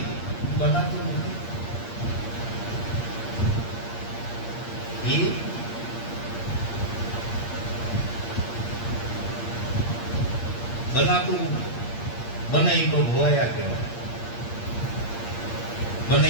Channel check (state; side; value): late; right; 8.6 ms